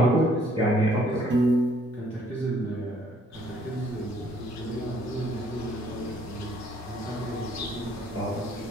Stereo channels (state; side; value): normal; both; correlation 0.64